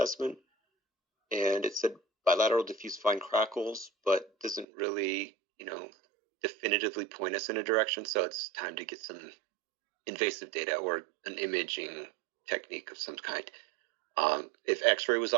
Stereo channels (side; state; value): left; drops out; at 4.7 s